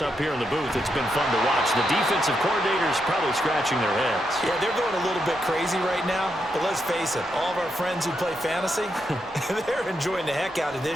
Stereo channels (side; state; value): both; normal; correlation 0.82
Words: up here in the booth, it's been fun to watch. The defensive coordinators probably scratching their heads. Yeah, they're going a little bit crazy right now, but let's face it, all of our friends who play fantasy, they're enjoying the heck out of